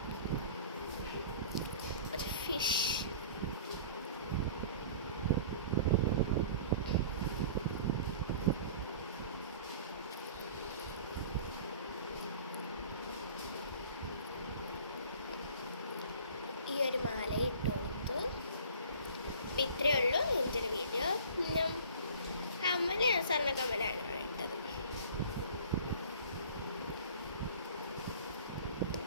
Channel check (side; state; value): both; inverted; correlation -0.45